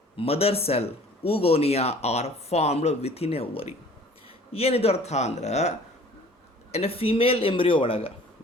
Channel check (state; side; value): normal; both; correlation 0.51